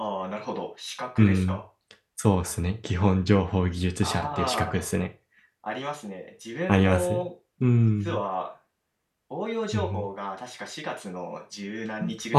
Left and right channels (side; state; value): both; identical; correlation 1.00